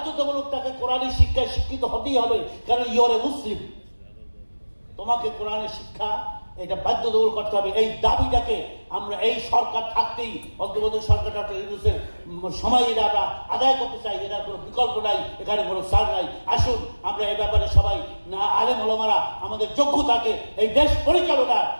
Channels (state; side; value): inverted; both; correlation -1.00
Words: তাকে কোরআনী শিক্ষায় শিক্ষিত হতেই হবে, কারণ ইউর এ মুসলিম। তোমাকে কোরআনের শিক্ষা এটা বাধ্যতামূলক করতে হবে। এই দাবিটাকে আমরা এই সরকার থাকতেই, অন্তর্বর্তী সরকার ডক্টর ইউনূসের সময় এটা আমরা আদায় করতে চাই। এটার কোনো বিকল্প নাই, এখানে কোনো ছাড় নাই। আসুন আমরা এই ব্যাপারে সবাই আলেম ওলামারা আমাদের যোগ্য থাকে এই দেশ পরিচালনার।